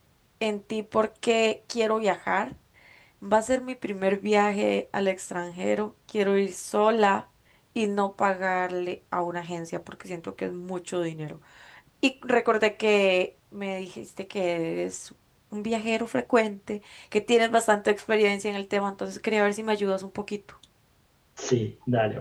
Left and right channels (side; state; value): both; identical; correlation 1.00